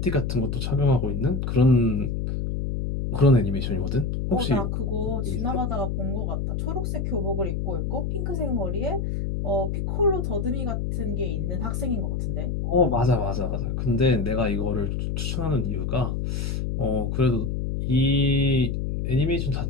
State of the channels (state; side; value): noise; left; hum, 1 dB below the sound